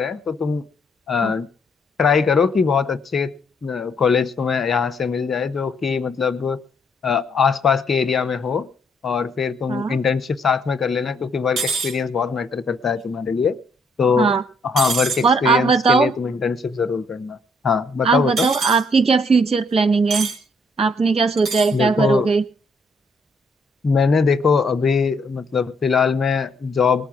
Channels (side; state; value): both; normal; correlation 0.69